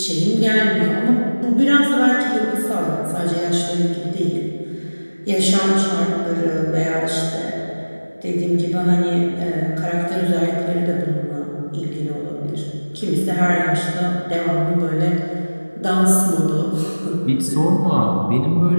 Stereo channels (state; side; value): inverted; both; correlation -1.00